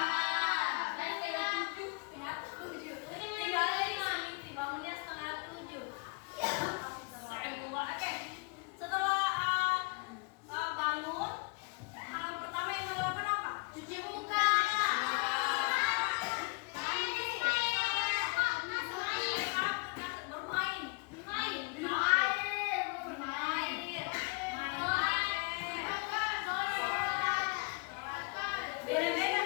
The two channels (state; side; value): quieter; right; 30.8 dB